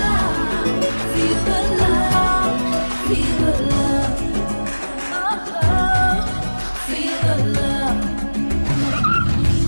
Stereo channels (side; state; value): both; inverted; correlation -1.00